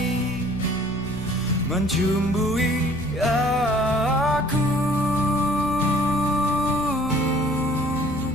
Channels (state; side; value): noise; left; rumble, 13 dB below the sound